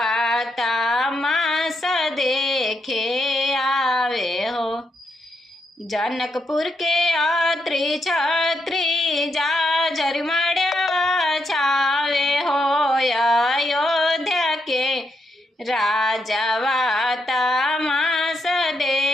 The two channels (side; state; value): both; normal; correlation 0.80